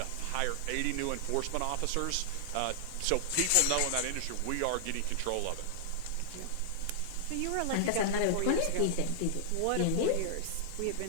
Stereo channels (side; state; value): both; different; correlation -0.01